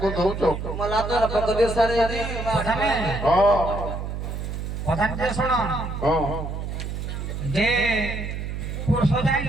ଦଉଛ ପ୍ରଧାନ ଶୁଣ যে পুরুষ যাই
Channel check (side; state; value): right; noise; hum, 5 dB below the sound